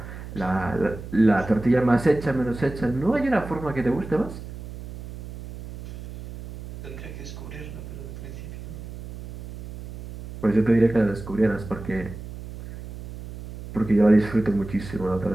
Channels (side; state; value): right; noise; hum, 12 dB below the sound